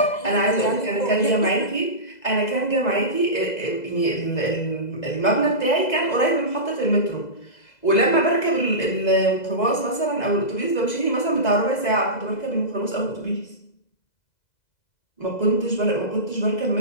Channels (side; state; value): right; late; 2.0 ms